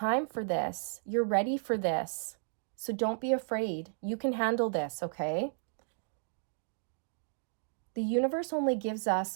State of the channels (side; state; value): left; silent; digital silence